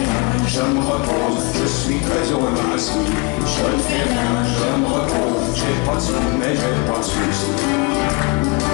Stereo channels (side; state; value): right; quieter; 29.9 dB